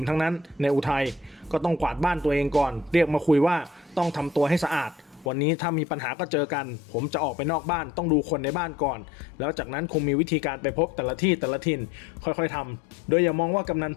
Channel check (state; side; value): drops out; right; at 5.3 s